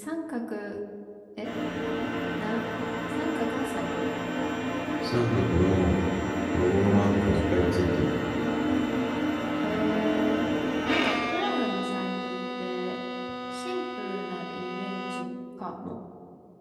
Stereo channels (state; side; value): identical; both; correlation 1.00